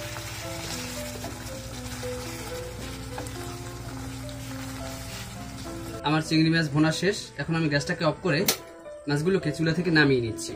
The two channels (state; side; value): identical; both; correlation 1.00